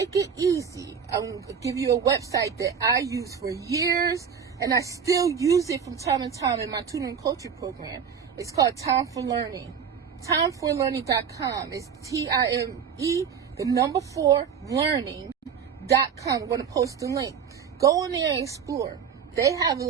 it easy, I'm going to give you a website that I use for years, and I still use it from time to time in my tutoring coaching program. It's called Time for Learning. Timeforlearning.com. It's TIME, the number 4, learning.com. I'm going to post the link. Go in there and explore. They have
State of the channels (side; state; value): left; quieter; 7.1 dB